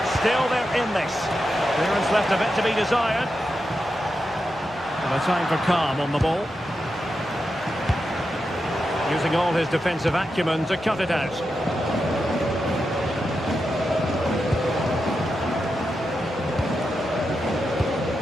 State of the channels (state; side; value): normal; both; correlation 0.88